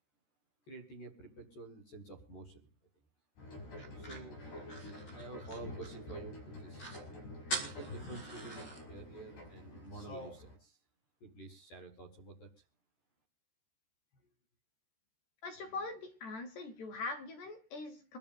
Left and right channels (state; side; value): late; right; 14 ms